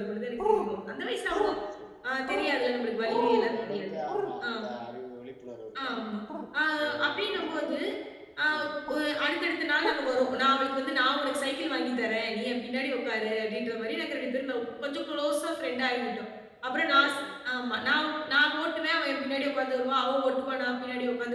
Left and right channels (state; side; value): identical; both; correlation 1.00